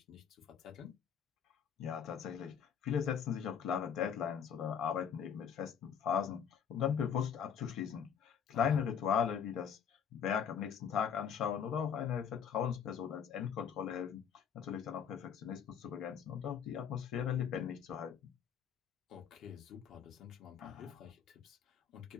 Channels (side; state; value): right; quieter; 7.8 dB